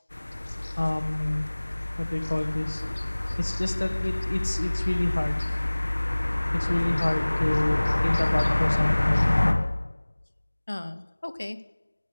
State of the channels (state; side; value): inverted; both; correlation -1.00